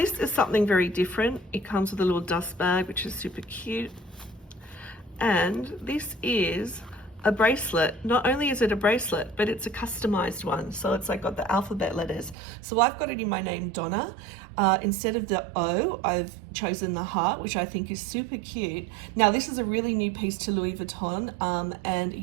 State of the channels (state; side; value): drops out; left; at 12.4 s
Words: is something very different. It comes with a little dust bag, which is super cute. And this is a bracelet. Not only is it a bracelet, but it's a customized one. So it's like got the alphabet letters. So I've got it in my name, Donna. Instead of the O, I've chosen the heart, which I think is super cute. Now, this is a really new piece to Louis Vuitton, and